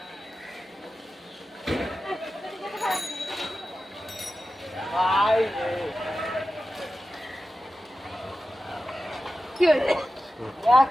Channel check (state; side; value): normal; both; correlation 0.93